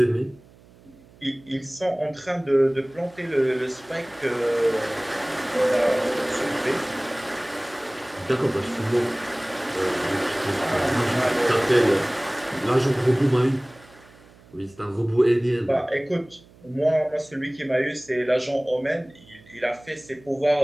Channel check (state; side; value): noise; right; hum, 25 dB below the sound